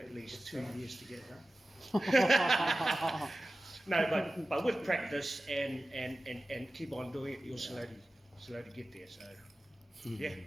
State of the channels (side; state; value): both; normal; correlation 0.95